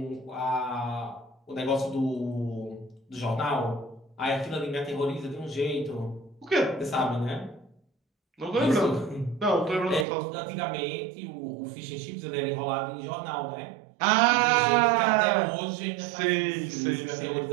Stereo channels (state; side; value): drops out; left; at 10.1 s